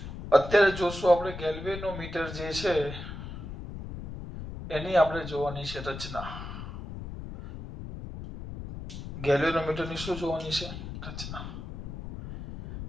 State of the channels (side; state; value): left; noise; rumble, 9 dB below the sound